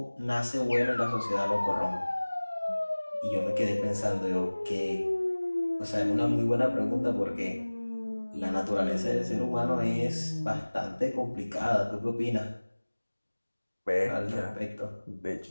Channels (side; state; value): both; inverted; correlation -1.00